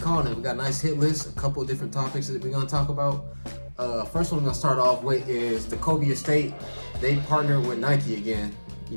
calling it. We got a nice hit list, a couple of different topics that we're gonna talk about. First one we're gonna start off with is the Kobe estate. They partnered with Nike again. You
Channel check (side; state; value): both; inverted; correlation -1.00